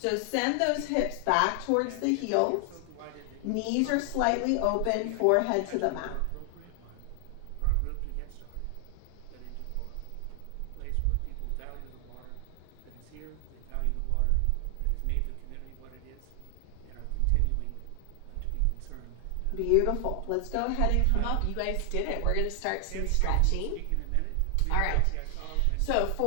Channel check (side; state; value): both; different; correlation 0.00